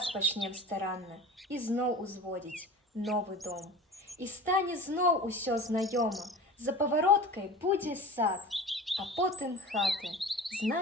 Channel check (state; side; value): normal; both; correlation 0.37